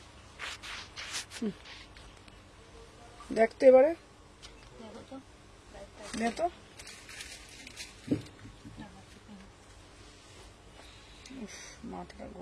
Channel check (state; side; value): identical; both; correlation 1.00